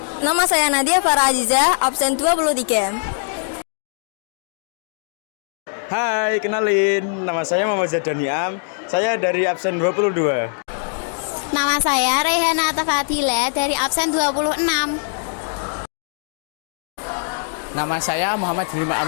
Nama saya Nadia Farah Aziza, absen 23. Hai, kenalin. Nama saya Muhammad Zadaniam. Saya dari absen 22. Nama saya Rehana Tafadila dari absen 26. Nama saya Muhammad Rima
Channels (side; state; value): right; silent; digital silence